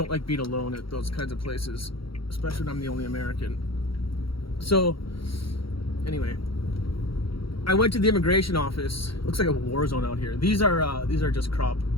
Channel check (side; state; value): right; late; 0.74 ms